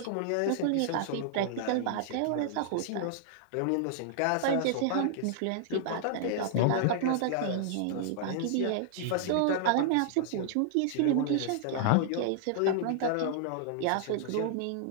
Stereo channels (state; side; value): different; both; correlation -0.01